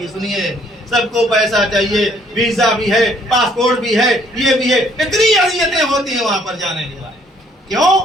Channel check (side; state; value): both; normal; correlation 0.63